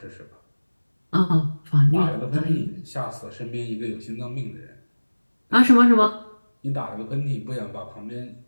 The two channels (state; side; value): inverted; both; correlation -1.00